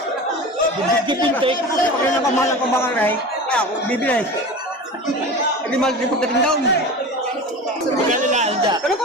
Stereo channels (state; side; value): normal; both; correlation 0.32